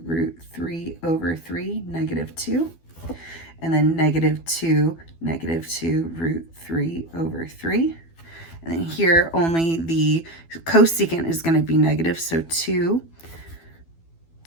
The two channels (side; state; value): right; late; 12 ms